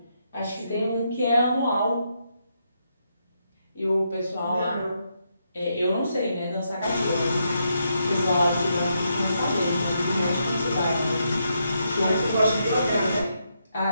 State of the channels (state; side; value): inverted; both; correlation -0.80